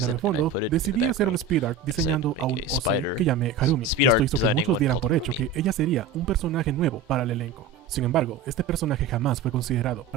and I put it in the background. I said, make a spider. Speed art designing one called Harumi. Ella sería un personaje nuevo para el elenco. Sin embargo, este personaje jamás fue considerado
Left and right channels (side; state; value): left; quieter; 5.3 dB